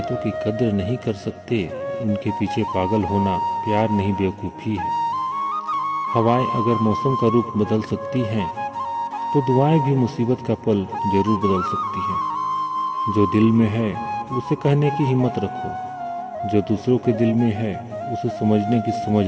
की कद्र नहीं कर सकते, उनके पीछे पागल होना प्यार नहीं बेवकूफ़ी है। हवाएं अगर मौसम का रूप बदल सकती हैं, तो दुआएं भी मुसीबत का पल जरूर बदल सकती हैं। जो दिल में है उसे कहने की हिम्मत रखो, जो दूसरों के दिल में है उसे समझने की समझ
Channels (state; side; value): identical; both; correlation 1.00